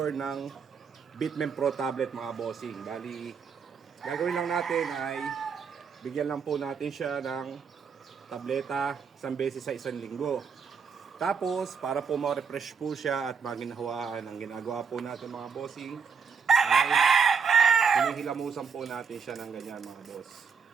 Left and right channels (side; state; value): left; quieter; 6.0 dB